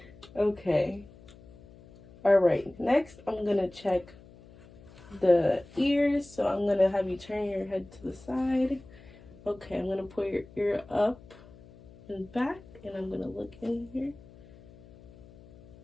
Okay. Alright. Next, I'm gonna check the ears. So I'm gonna have you turn your head to the side. Okay, I'm gonna put your ear up and back, and I'm gonna look in here.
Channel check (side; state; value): left; noise; hum, 22 dB below the sound